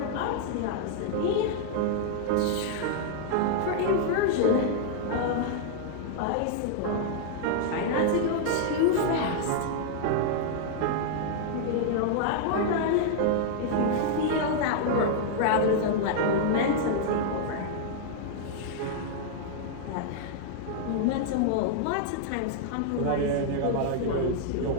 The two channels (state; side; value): different; both; correlation -0.01